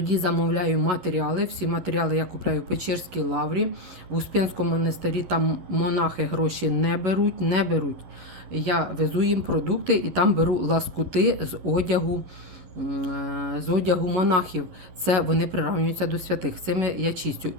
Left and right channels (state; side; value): late; left; 11 ms